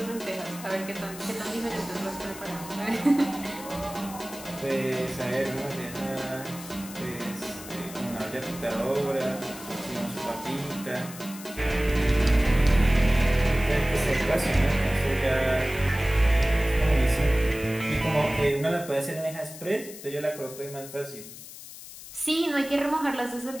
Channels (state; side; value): noise; left; hiss, 14 dB below the sound